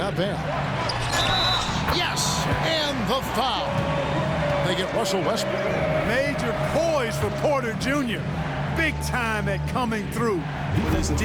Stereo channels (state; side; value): identical; both; correlation 1.00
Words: bad. Yes, and the foul. They get Russell Westbrook. Major poise for Porter Jr. Big time at coming through when his